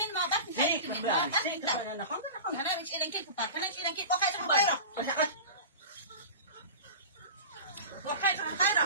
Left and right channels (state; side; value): inverted; both; correlation -0.32